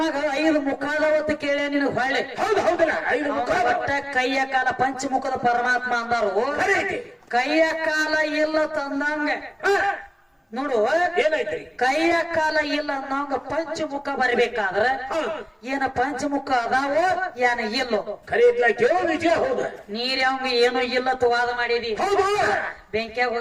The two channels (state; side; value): identical; both; correlation 1.00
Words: 5 ಮುಖದವತ್ತು ಕೇಳ್ಯ ನಿನಗ್ ಹೊಳ್ಳಿ. ಒಟ್ಟ ಕೈಯ ಕಾಲ ಪಂಚಮುಖದ ಪರಮಾತ್ಮ ಅಂದಾರು. ಕೈಯ ಕಾಲ ಇಲ್ಲ ತಂದಂಗ ನೋಡು ಏನೈತ್ರಿ? ಕೈಯ ಕಾಲ ಇಲ್ಲ ಅನ್ನೋಂಗ ಪಂಚಮುಖ ಬರಬೇಕಾದ್ರ ಏನ ಪಂಚಮುಖ ಅದಾವೋ ಏನ ಇಲ್ಲೋ ನೀರ್ ಅವಂಗ ಏನೋ ಇಲ್ಲ ವಾದ ಮಾಡಿದಿ. ಬೆಂಕಿಯಾಗ